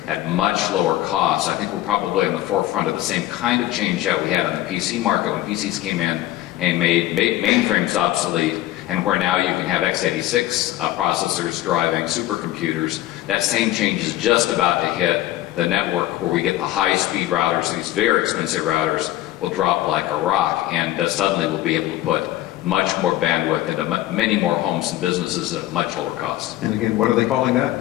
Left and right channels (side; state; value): right; quieter; 15.1 dB